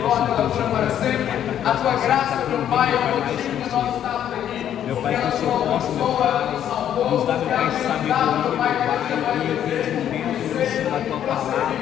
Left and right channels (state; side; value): quieter; right; 10.2 dB